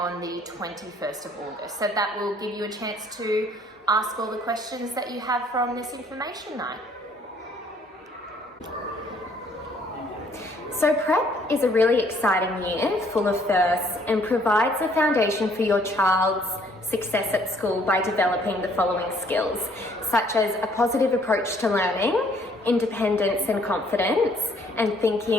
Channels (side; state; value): both; normal; correlation 0.62